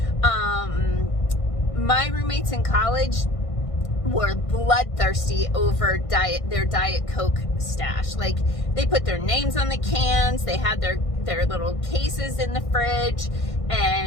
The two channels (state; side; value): late; right; 1.6 ms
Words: My roommates in college were bloodthirsty over their Diet Coke stash. Like, they put their names on the cans, they had their little cases in the fridge,